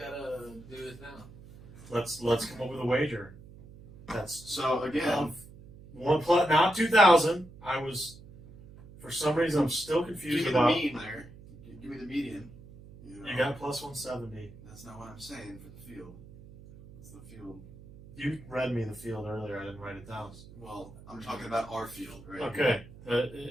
this now. Let's come up with a wager. That's So again, not 2,000. I was, for some reason, I'm still confused give me about. the mean there. Give me the median. You got plus 170. That's not what I'm saying for the field. It's the field. You read me the field earlier. I didn't write it down. Well, I'm talking about our field, right? Okay.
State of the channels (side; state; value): right; noise; hum, 19 dB below the sound